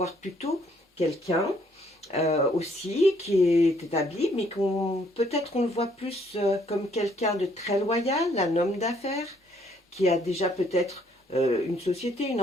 plutôt quelqu'un aussi qui est établi, mais peut-être on le voit plus comme quelqu'un de très loyal, un homme d'affaires, qui a déjà peut-être une société, une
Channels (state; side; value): normal; both; correlation 0.66